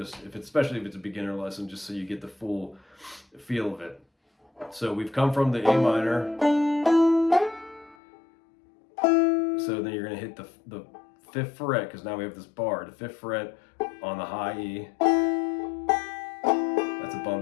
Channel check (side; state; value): right; drops out; at 8.0 s